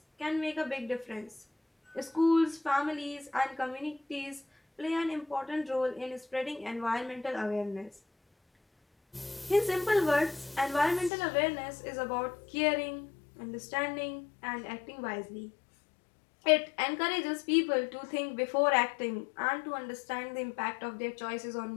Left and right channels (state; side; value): drops out; right; at 11.1 s